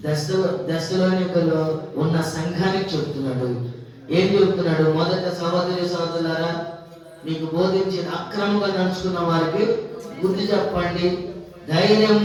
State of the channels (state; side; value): identical; both; correlation 1.00